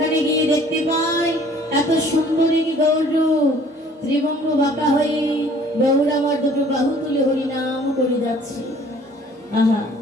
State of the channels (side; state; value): both; normal; correlation 0.55